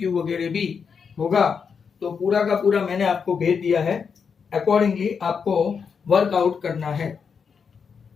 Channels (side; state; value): right; quieter; 6.2 dB